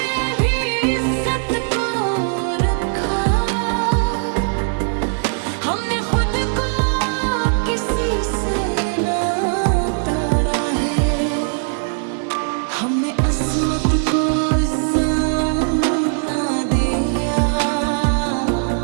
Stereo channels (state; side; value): silent; left; digital silence